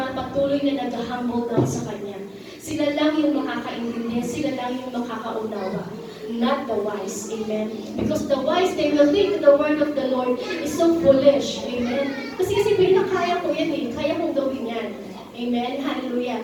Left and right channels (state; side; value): identical; both; correlation 1.00